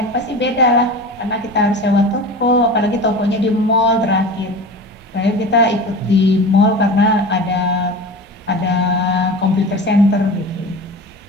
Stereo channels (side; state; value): both; normal; correlation 0.33